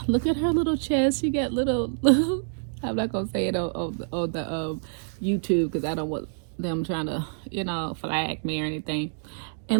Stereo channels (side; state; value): left; silent; digital silence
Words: look at her little chest. She got little I'm not gonna say it on the YouTube, because I don't want them trying to flag me or anything.